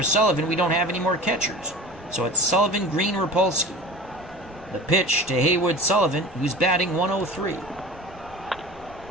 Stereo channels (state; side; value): normal; both; correlation 0.37